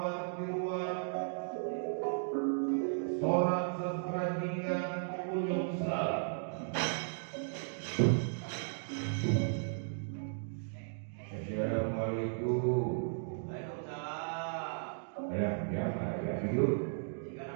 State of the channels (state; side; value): silent; left; digital silence